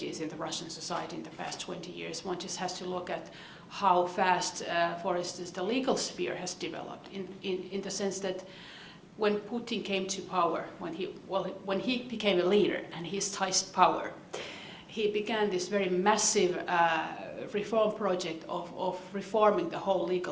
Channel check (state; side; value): identical; both; correlation 1.00